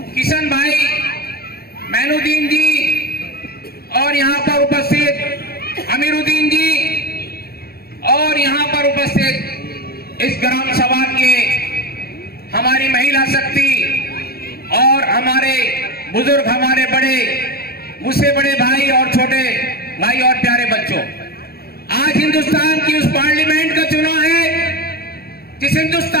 किशन भाई, मैनुद्दीन जी और यहाँ पर उपस्थित अमीरुद्दीन जी और यहाँ पर उपस्थित इस ग्राम सभा के हमारी महिला शक्ति और हमारे बुजुर्ग, हमारे बड़े, मुझसे बड़े भाई और छोटे भाई और प्यारे बच्चों, आज हिंदुस्तान की उस पार्लियामेंट का चुनाव है जिस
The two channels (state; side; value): late; right; 0.45 ms